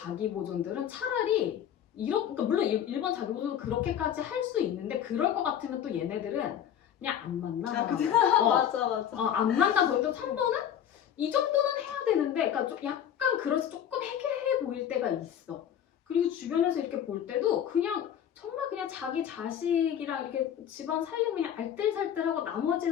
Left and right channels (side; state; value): right; quieter; 9.6 dB